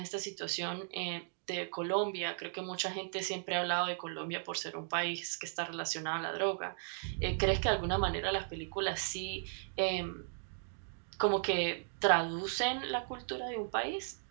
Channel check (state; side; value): silent; left; digital silence